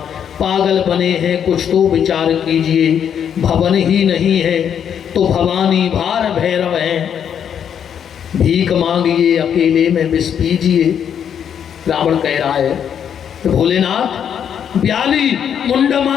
पागल बने हैं कुछ तो विचार कीजिए, भवन ही नहीं है तो भवानी भार भैरव है, भीख मांगिए अकेले में विष पीजिए। रावण कह रहा है तो भोलेनाथ ब्याली,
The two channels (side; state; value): right; quieter; 8.5 dB